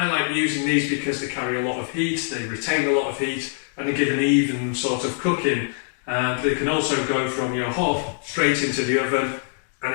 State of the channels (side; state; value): right; silent; digital silence